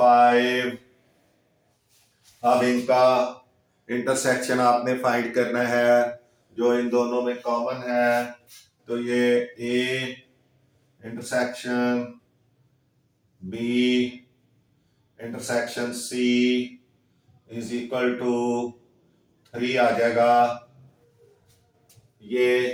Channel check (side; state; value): both; identical; correlation 1.00